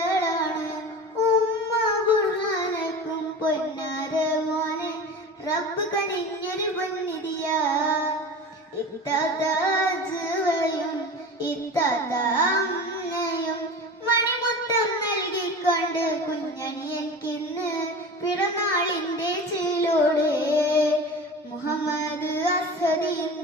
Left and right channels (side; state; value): both; normal; correlation 0.33